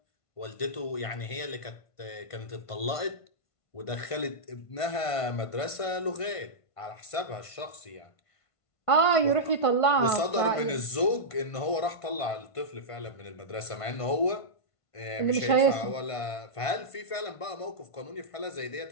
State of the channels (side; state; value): right; late; 1.5 ms